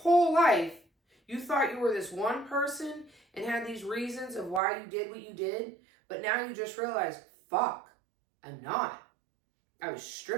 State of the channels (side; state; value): left; drops out; at 4.6 s